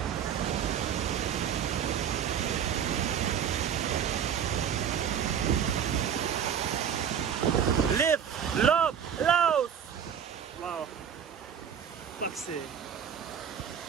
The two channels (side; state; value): left; quieter; 8.3 dB